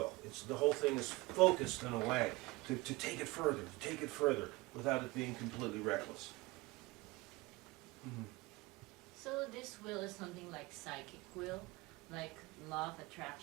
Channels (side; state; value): left; quieter; 22.4 dB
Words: The whole thing is focused in a way to take it further, without it being completely reckless. So this will is something like psychic will, like law of